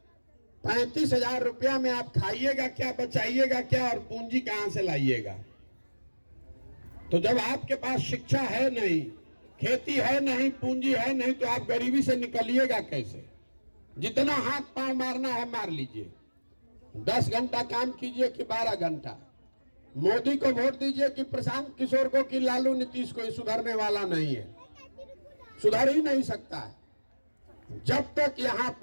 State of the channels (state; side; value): inverted; both; correlation -1.00